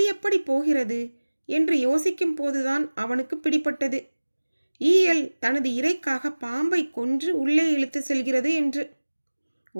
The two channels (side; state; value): both; inverted; correlation -1.00